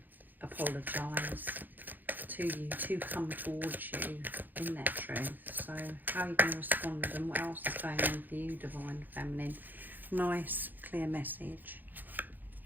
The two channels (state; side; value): late; left; 0.087 ms